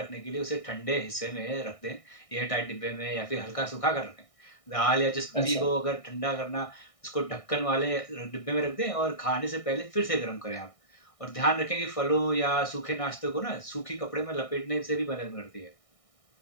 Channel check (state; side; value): late; right; 1.6 ms